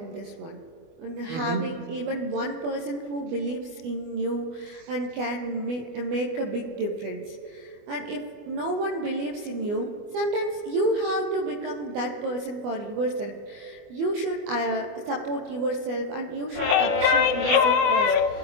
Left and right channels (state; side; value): late; left; 24 ms